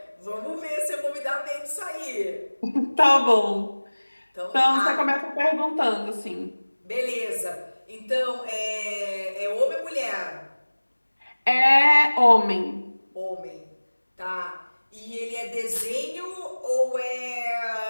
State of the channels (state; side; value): inverted; both; correlation -1.00